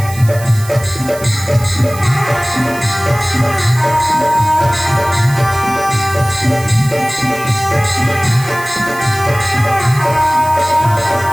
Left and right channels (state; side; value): noise; right; hiss, 15 dB below the sound